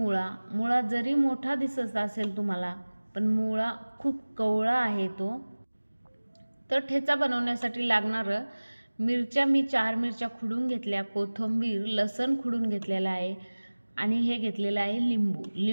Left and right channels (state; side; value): inverted; both; correlation -1.00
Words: जरी मोठा दिसत असेल तुम्हाला, पण मुळा खूप कवळा आहे तो। तर ठेचा बनवण्यासाठी लागणार मिरच्या मी 4 मिरच्या खुडून घेतल्या, कोथिंबीर लसण खुडून घेतलेला आहे आणि हे घेतलेलं आहे